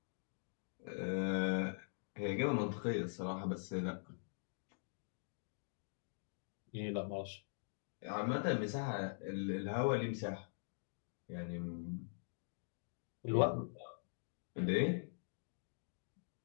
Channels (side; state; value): right; silent; digital silence